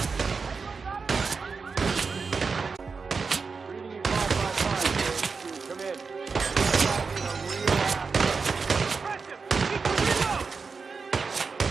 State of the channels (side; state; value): left; quieter; 4.9 dB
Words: Reading you 555. Come in. Press him! Keep the reload!